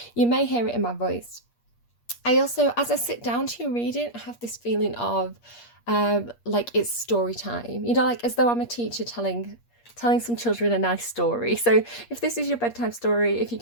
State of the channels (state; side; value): late; right; 8.5 ms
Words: you may hear it in my voice. I also, as I sit down to read it, I have this feeling of like it's story time, you know, like as though I'm a teacher telling some children a nice story. So if this is your bedtime story, if you're